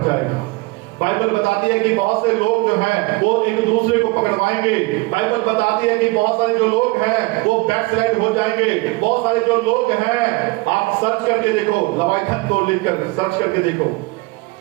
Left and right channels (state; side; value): quieter; left; 24.2 dB